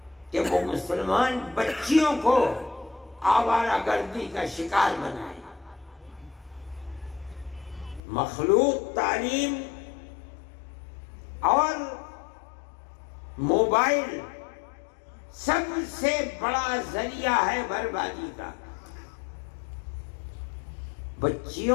کہ وہ مسلمان بچیوں کو آوارہ گردی کا شکار بنائے۔ مخلوط تعلیم اور موبائل سب سے بڑا ذریعہ ہے بربادی کا۔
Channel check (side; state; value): right; drops out; at 8.0 s